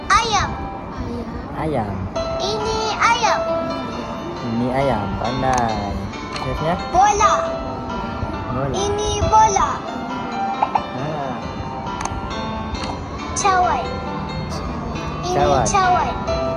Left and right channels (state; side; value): identical; both; correlation 1.00